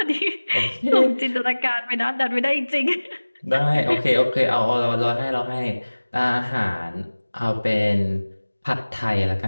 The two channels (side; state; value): both; inverted; correlation -1.00